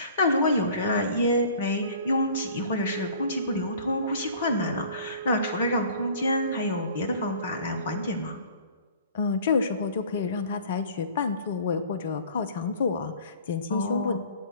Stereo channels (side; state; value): both; inverted; correlation -0.48